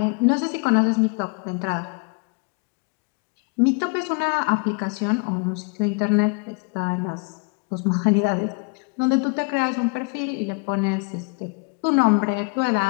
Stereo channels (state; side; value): quieter; right; 33.4 dB